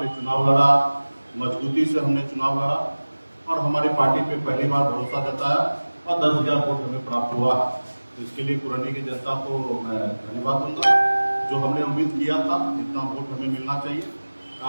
चुनाव लड़ा, मजबूती से हमने चुनाव लड़ा और हमारी पार्टी पे पहली बार भरोसा जताया और 10,000 वोट हमें प्राप्त हुआ। इसके लिए पुरनी की जनता को मैं धन्यवाद दूंगा। जो हमने उम्मीद किया था जितना वोट हमें मिलना चाहिए,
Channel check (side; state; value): both; inverted; correlation -1.00